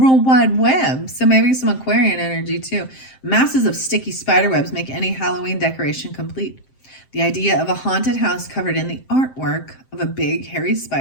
Wide Web. So maybe some Aquarian energy too. Masses of sticky spider webs make any Halloween decoration complete. The idea of a haunted house covered in the artwork of a big hairy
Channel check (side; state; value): right; late; 7.7 ms